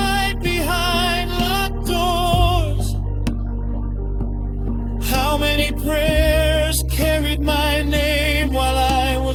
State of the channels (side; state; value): both; identical; correlation 1.00